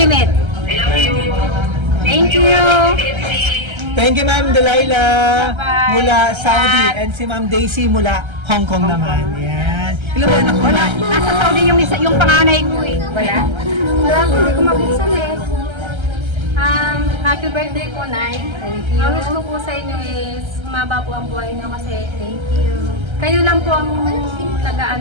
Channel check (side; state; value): left; late; 1.3 ms